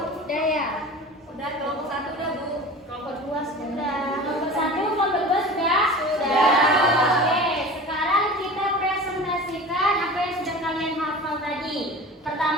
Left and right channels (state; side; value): normal; both; correlation 0.36